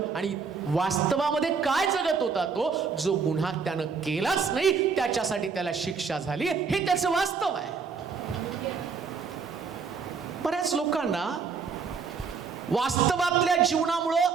आणि वास्तवामध्ये काय जगत होता तो? जो गुन्हा त्यानं केलाच नाही त्याच्यासाठी त्याला शिक्षा झाली, हे त्याचं वास्तव आहे. बऱ्याच लोकांना वास्तवातल्या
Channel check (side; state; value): left; quieter; 5.5 dB